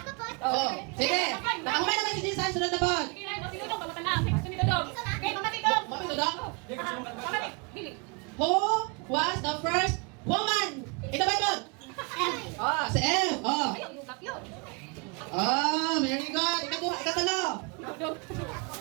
Sige. Nakahumay naman si Jesus, sunod na po. Who was the first woman in the Bible? Si Eve. Very good. Ikatalo.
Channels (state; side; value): quieter; left; 31.5 dB